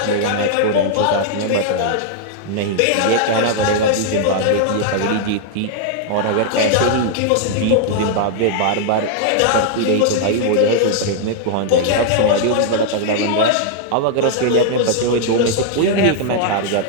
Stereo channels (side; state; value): both; different; correlation -0.01